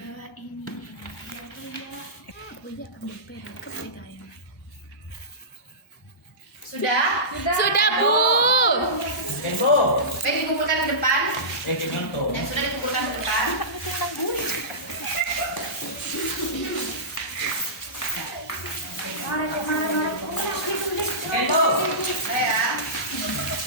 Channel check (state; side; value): normal; both; correlation -0.20